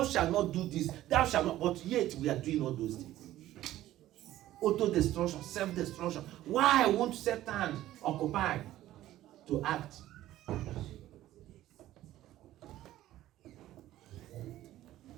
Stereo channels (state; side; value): quieter; left; 14.3 dB